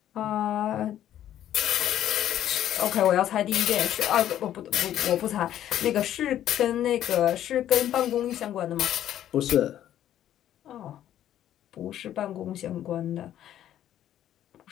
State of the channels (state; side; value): quieter; right; 11.5 dB